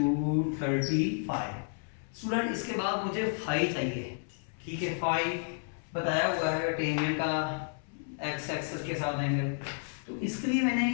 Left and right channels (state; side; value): silent; right; 57 dB below the other